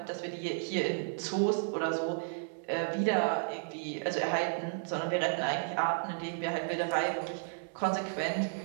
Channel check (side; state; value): left; silent; digital silence